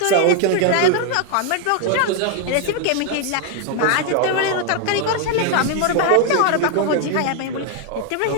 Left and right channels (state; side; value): different; both; correlation 0.00